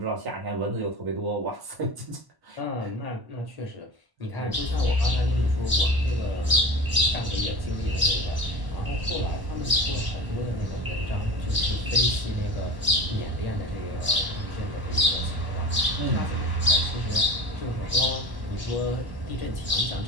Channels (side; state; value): left; late; 1.1 ms